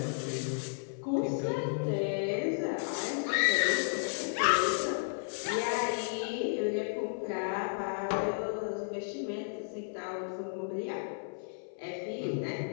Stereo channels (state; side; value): silent; right; 56 dB below the other